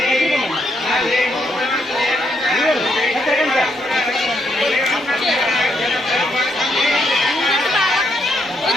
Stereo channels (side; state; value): both; normal; correlation 0.76